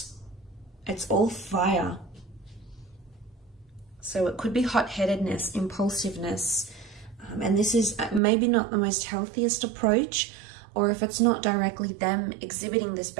it's all fire. So it could be hot-headedness, impulsiveness, and this is maybe not the most healthiest approach, or if it's not directly them exhibiting this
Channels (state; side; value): drops out; left; at 8.2 s